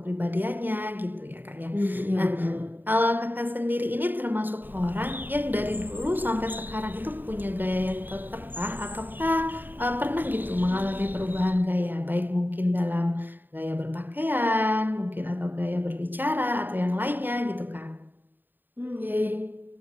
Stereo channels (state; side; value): late; left; 0.091 ms